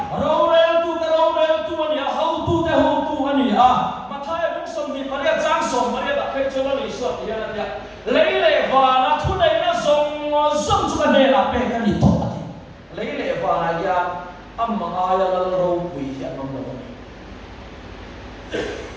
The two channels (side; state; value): both; identical; correlation 1.00